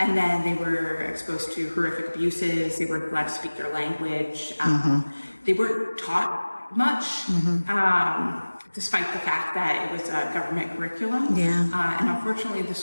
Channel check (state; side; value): inverted; both; correlation -1.00